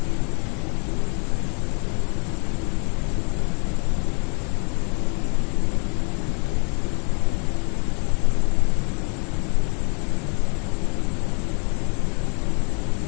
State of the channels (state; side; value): quieter; right; 37.9 dB